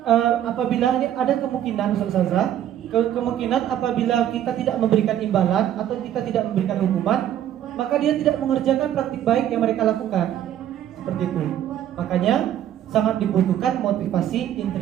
apabila ini ada kemungkinan Ustazah, kemungkinan apabila kita tidak memberikan imbalan atau kita tidak memberikan hukuman, maka dia tidak mengerjakan praktik baik yang mereka lakukan. Seperti itu. Makanya sangat dibutuhkan motivasi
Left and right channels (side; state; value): left; quieter; 11.1 dB